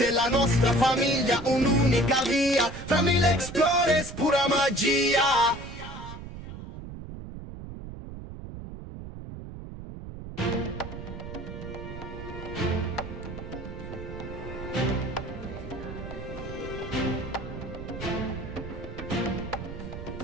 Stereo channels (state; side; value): noise; right; rumble, 11 dB below the sound